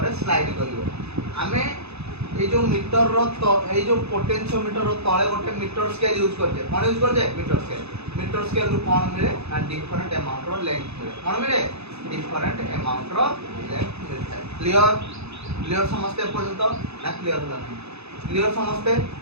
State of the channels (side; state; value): left; late; 0.79 ms